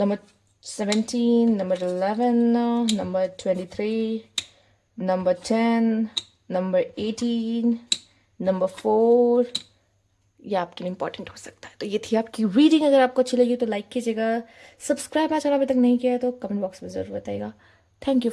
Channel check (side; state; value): both; identical; correlation 1.00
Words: 17, number 11, number 23, number 10, number 18, number 4। ये आपके लिए important हो सकता है। तो ये थी आपकी रीडिंग। अगर आपको अच्छी लगी तो लाइक कीजिएगा, सब्सक्राइब मेरा चैनल अभी तक नहीं किया है तो कमेंट बॉक्स में ज़रूर बताइएगा। Thank you